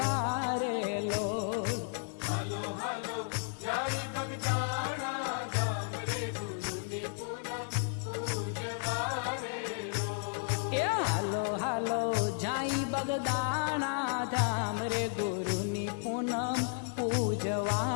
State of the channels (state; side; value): silent; right; digital silence